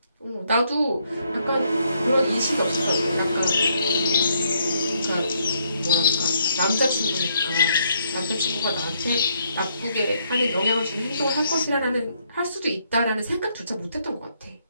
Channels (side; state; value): both; inverted; correlation -0.73